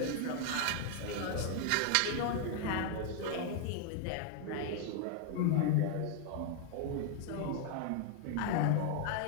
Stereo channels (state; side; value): different; both; correlation 0.00